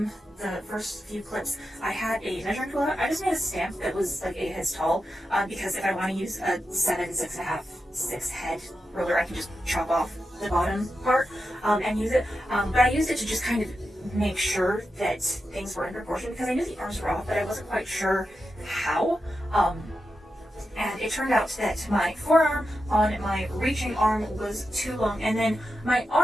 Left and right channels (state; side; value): normal; both; correlation 0.89